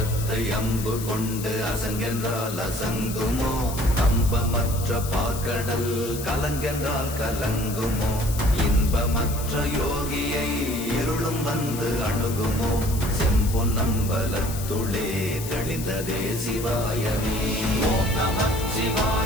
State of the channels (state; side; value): noise; left; hiss, 10 dB below the sound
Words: அம்பு கொண்டு அசங்கென்றால் அசங்குமோ? நம்பமற்ற பார்க்கடல் கலங்கென்றால் கலங்குமோ? இன்பமற்ற யோகியை இருளும் வந்து அணுகுமோ? செம்பொன்னம்பலத்துளே தெளிந்ததே சிவாயமே. ஓம்